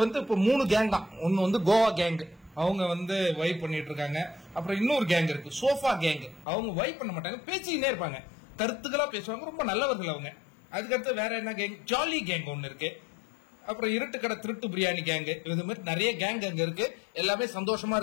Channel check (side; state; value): right; drops out; at 6.5 s